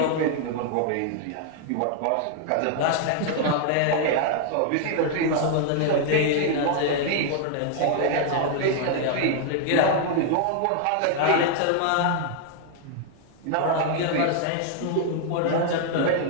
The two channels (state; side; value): different; both; correlation 0.00